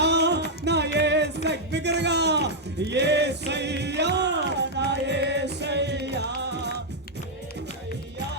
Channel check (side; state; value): both; normal; correlation -0.03